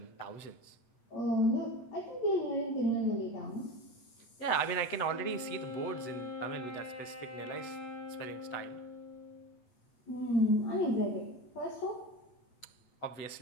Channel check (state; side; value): late; right; 7.9 ms